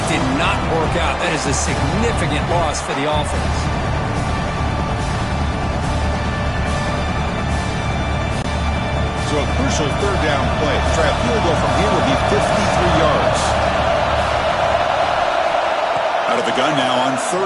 did not work out. That is a significant loss for the offense. So a crucial third down play. Try a field goal from here would be 53 yards. Out of the gun now on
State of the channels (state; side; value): identical; both; correlation 1.00